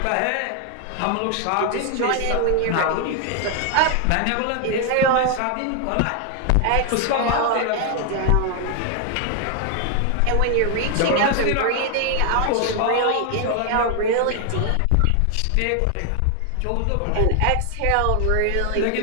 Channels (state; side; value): different; both; correlation 0.01